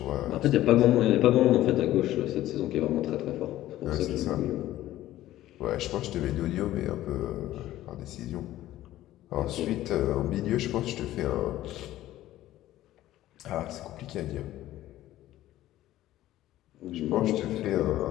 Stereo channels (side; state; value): right; quieter; 14.5 dB